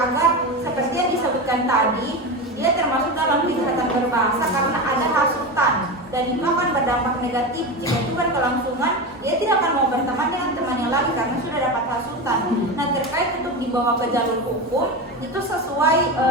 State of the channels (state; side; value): normal; both; correlation 0.21